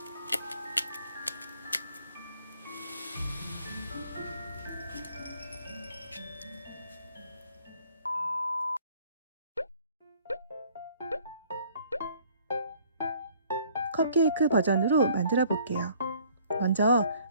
컵케이크 버전으로 만들어 볼게요. 먼저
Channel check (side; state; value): both; inverted; correlation -0.58